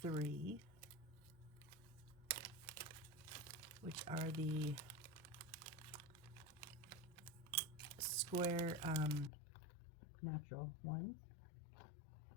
which are the square natural ones.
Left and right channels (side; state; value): right; drops out; at 9.3 s